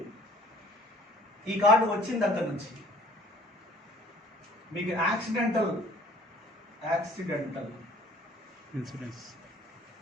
ఈ కార్డు వచ్చిన దగ్గర నుంచి మీకు యాక్సిడెంటల్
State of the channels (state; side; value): normal; both; correlation 0.53